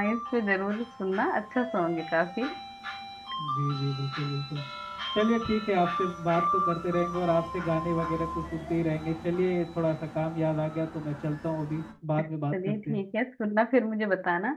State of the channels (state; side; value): identical; both; correlation 1.00